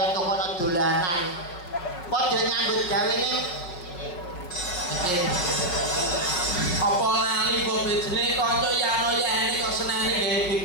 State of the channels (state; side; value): late; right; 5.6 ms